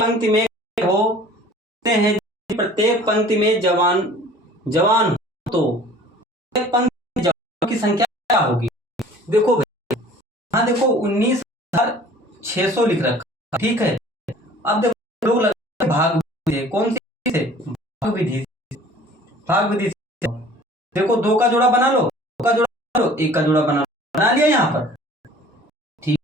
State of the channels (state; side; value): normal; both; correlation 0.49